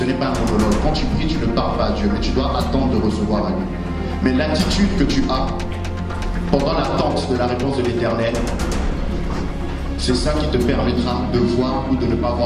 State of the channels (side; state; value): both; identical; correlation 1.00